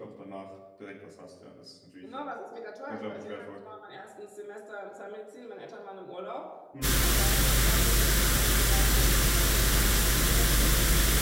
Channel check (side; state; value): both; identical; correlation 1.00